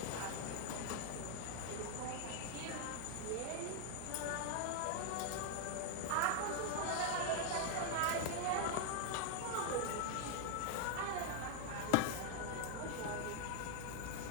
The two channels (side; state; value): both; different; correlation 0.00